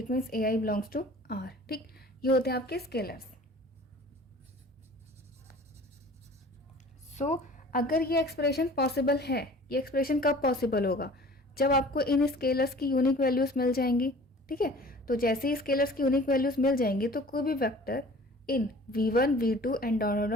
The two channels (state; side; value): normal; both; correlation 0.46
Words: means AI belongs to R. ठीक, ये होते हैं आपके स्केलर्स. सो अगर ये एक्सप्रेशन पॉसिबल है, ये एक्सप्रेशन कब पॉसिबल होगा? जब आपको इन स्केलर्स की यूनिक वैल्यूज मिल जाएंगी. ठीक है, तो जैसे ही स्केलर्स की यूनिक वैल्यूज मिल जाएंगी तो कोई भी vector in V1 V2 and dot